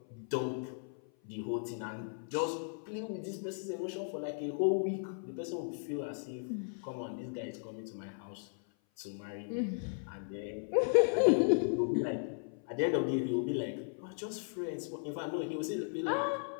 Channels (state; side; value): silent; right; 54 dB below the other